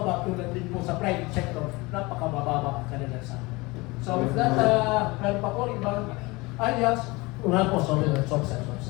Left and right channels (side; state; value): right; quieter; 23.6 dB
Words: tulad din po sa private sector, napakabababa ang kanilang sahod. So with that, meron pa po ibang alias, una po, sorry.